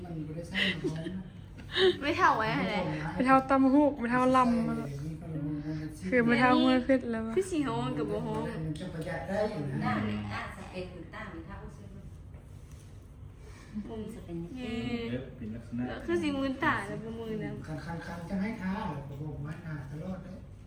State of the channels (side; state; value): both; identical; correlation 1.00